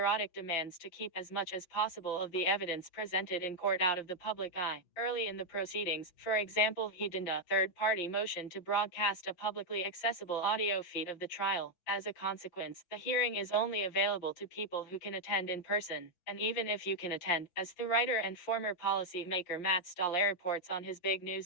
demands to keep as much as possible of the evidence presented in court out of the public eye. Early in the proceedings, for example, he denied a third-party motion to broadcast a publicly accessible audio feed of the trial. As a consequence, the hearing is only available to people who can attend in person. And even if you can attend, as the writer and former policymaker Matt Stoller reports on his big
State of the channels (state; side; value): late; right; 5.7 ms